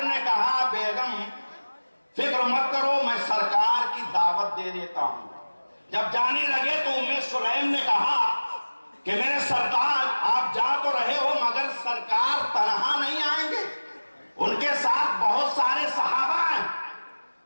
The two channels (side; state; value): both; inverted; correlation -1.00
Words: نے کہا بیگم فکر مت کرو، میں سرکار کی دعوت دے دیتا ہوں۔ جب جانے لگے تو ام سلیم نے کہا کہ میرے سردار آپ جا تو رہے ہو مگر سرکار تنہا نہیں آئیں گے، ان کے ساتھ بہت سارے صحابہ ہیں،